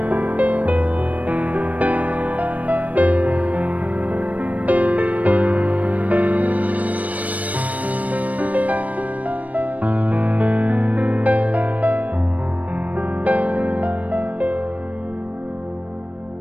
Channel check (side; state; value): left; late; 0.070 ms